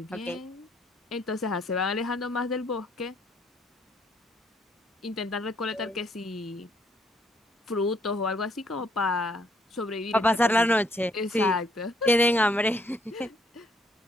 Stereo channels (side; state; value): both; normal; correlation 0.68